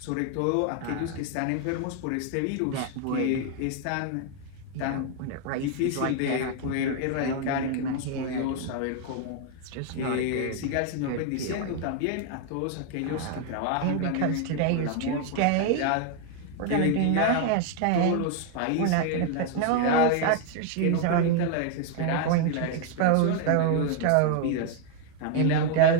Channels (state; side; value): different; both; correlation 0.00